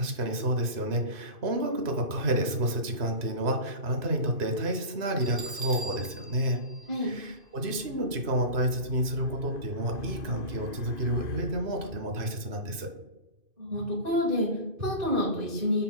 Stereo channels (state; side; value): late; left; 2.5 ms